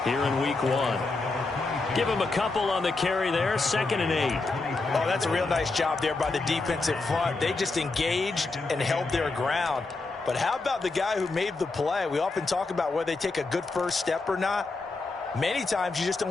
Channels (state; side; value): quieter; right; 3.6 dB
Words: here in Week 1. Give him a couple on the carry there, 2nd and 8. Oh, that's a real nice job there by the defensive front. They just engaged and held their ground. But how about the guy who made the play? We often talk about whether they take a good first step or not. Many times you just